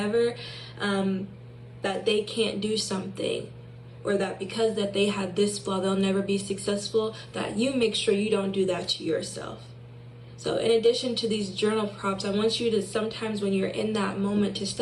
that they can't do something, or that because that they have this flaw, they'll never be successful, that you make sure you don't do that to yourself. So in addition to these journal prompts, I want you to sometimes when you're in that moment to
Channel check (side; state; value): both; identical; correlation 1.00